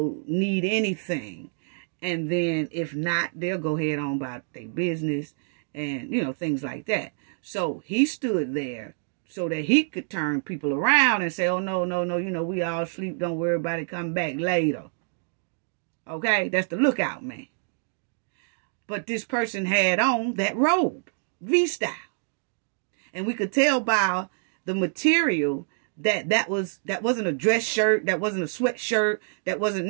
need anything. And then if not, they'll go ahead on about their business and, you know, things like that. So he stood there so that he could turn people around and say, oh, no, no, no, you know, we all sleep. Don't worry about it. Come back later. Okay? That's the lookout man. But this person had on that robe, V-style. And we could tell by the material that wasn't a dress shirt. That wasn't a sweatshirt. That wasn't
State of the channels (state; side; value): silent; left; digital silence